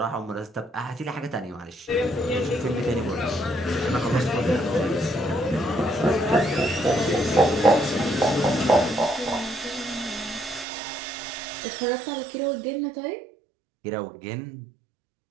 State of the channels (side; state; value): left; drops out; at 10.7 s